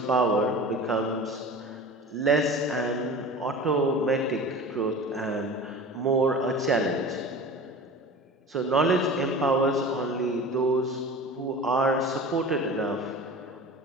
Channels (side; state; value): both; normal; correlation 0.37